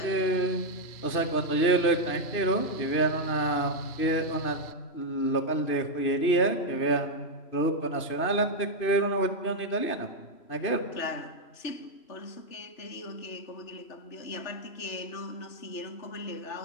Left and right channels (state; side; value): late; right; 3.0 ms